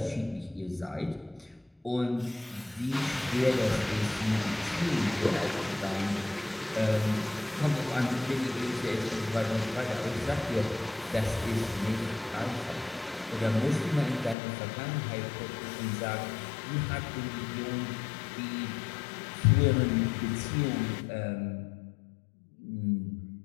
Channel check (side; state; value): right; drops out; at 14.4 s